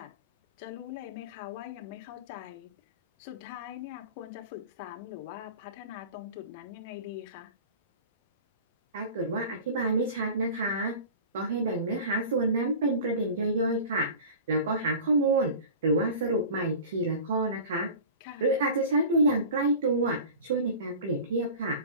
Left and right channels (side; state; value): both; inverted; correlation -0.37